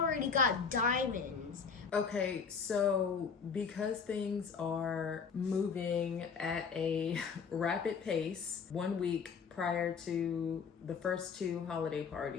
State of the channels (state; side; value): quieter; right; 5.8 dB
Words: got diamonds Okay, so because things are moving at a rapid pace, 1 week prior to the first two holiday